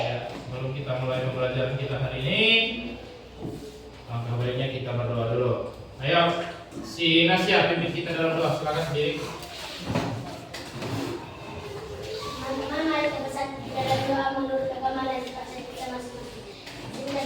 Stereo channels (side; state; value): both; identical; correlation 1.00